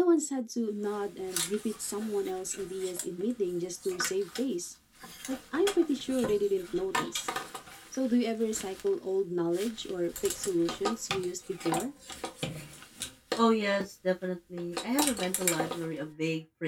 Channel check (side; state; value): both; identical; correlation 1.00